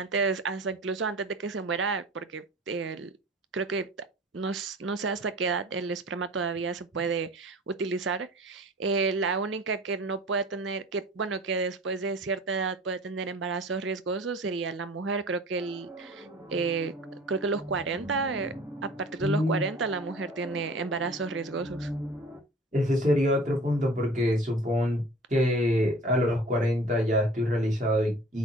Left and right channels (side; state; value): both; normal; correlation 0.43